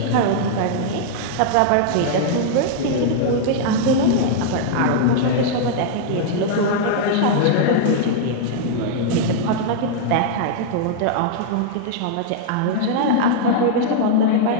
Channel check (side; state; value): both; different; correlation -0.01